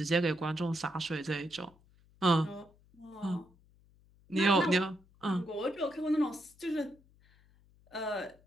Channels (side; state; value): left; noise; hum, 29 dB below the sound